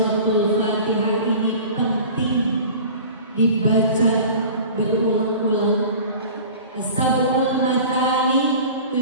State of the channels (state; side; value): inverted; both; correlation -0.41